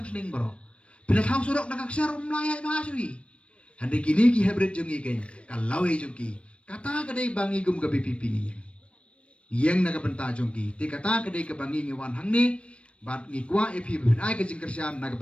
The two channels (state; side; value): late; right; 0.061 ms